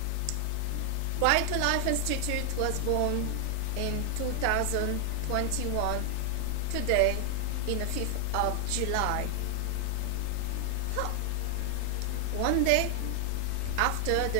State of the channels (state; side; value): different; both; correlation 0.00